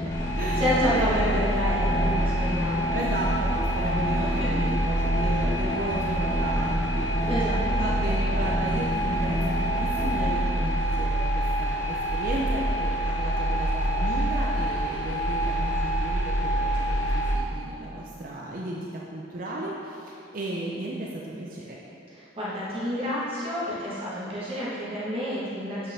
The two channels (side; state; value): both; normal; correlation 0.59